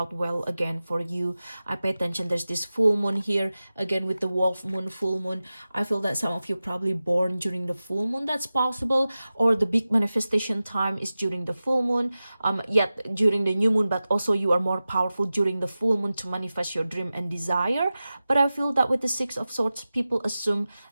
well again for you. I pay attention, there's this full moon here again with the wolf moon, full moon. I feel that some of you probably born during the full moon. That's possible. Or the big manifestation time is during the full moon, yet during the new moon, but also you are more powerful during the full moon to manifest your dream and desire. But I feel that with the Six of Swords, people assume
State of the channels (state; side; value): inverted; both; correlation -0.95